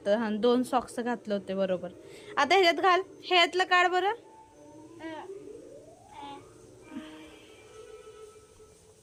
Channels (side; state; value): both; identical; correlation 1.00